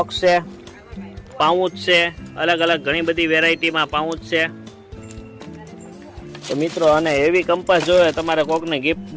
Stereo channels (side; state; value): both; identical; correlation 1.00